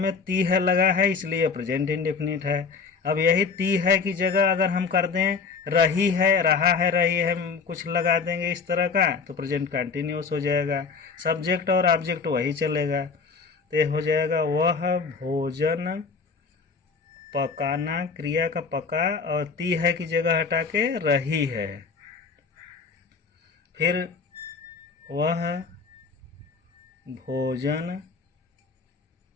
ती है लगा है, इसलिए प्रेजेंट इंडेफिनिट है। अब यही ती है की जगह अगर हम कर दें रही है, रहा है, रही है कुछ लगा देंगे इस तरह का, तो प्रेजेंट कंटिन्यूस हो जाएगा, सब्जेक्ट और ऑब्जेक्ट वही चलेगा। तो हो जाएगा वह भोजन पकाना, क्रिया का पका और ती है की जगह हटा के रही है। फिर वह भोजन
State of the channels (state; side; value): quieter; right; 5.2 dB